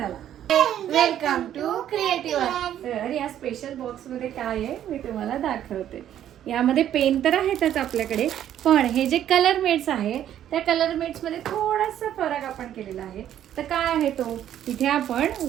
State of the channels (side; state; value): left; quieter; 11.0 dB